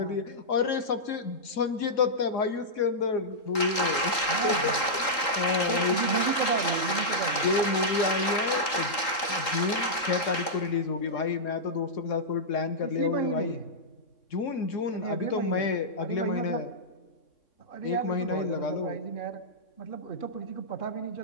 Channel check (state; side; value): late; right; 3.8 ms